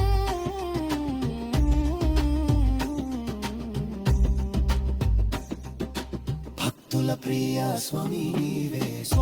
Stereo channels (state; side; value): identical; both; correlation 1.00